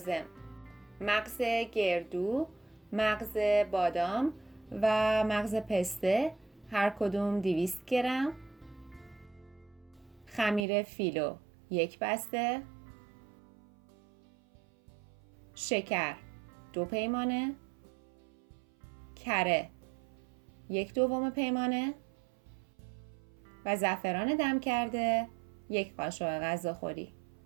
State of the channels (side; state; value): left; drops out; at 10.6 s